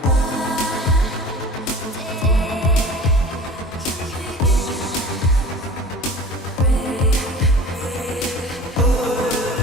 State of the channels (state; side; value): normal; both; correlation 0.40